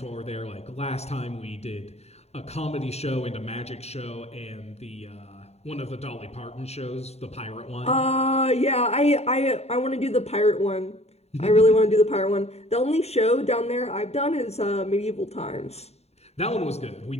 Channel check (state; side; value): late; right; 0.31 ms